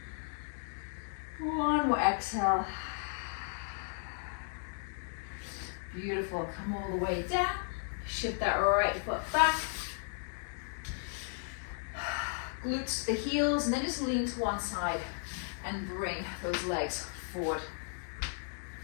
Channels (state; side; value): silent; right; 54 dB below the other